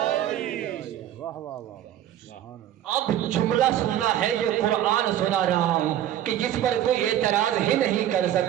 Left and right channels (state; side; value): quieter; left; 11.6 dB